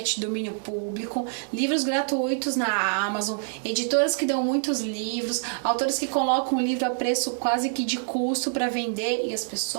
domínio público, livros gratuitos na Amazon, editoras que dão muitos livros, autores que colocam o livro a preço quase que de custo para vender e as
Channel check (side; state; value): left; silent; digital silence